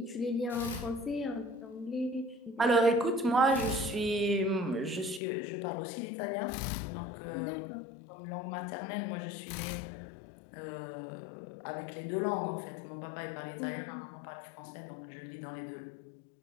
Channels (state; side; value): drops out; right; at 5.2 s